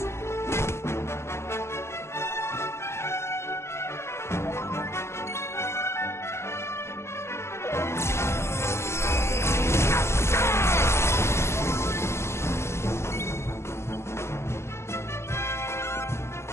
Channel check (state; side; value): late; right; 0.13 ms